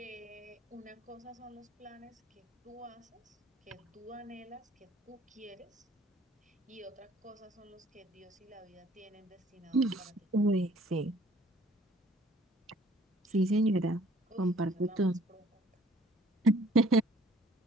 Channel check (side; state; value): both; normal; correlation 0.57